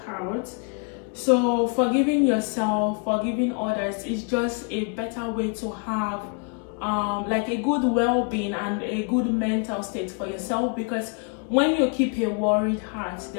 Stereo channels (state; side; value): quieter; right; 35.8 dB